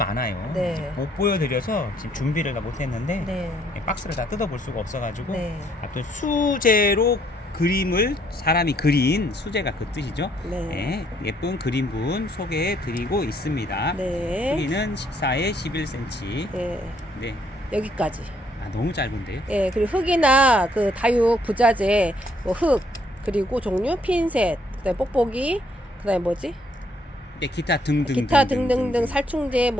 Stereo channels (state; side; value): normal; both; correlation 0.68